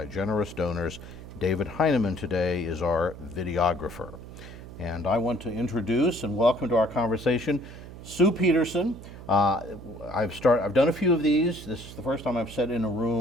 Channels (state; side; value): noise; right; hum, 14 dB below the sound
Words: generous donors. David Heineman today is our videographer. And I want to introduce and welcome to our conversation Sue Peterson. I've done a few of these. This is the first time I've sat in a